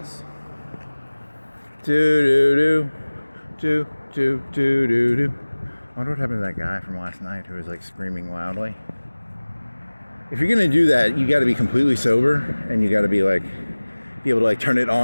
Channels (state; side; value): inverted; both; correlation -1.00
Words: Do. I wonder what happened to that guy from last night who was like screaming loudly. If you're gonna do that, you got to be completely sober, and you got to be able to like turn it